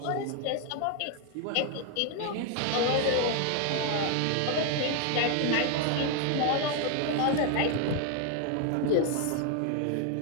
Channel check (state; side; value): different; both; correlation 0.01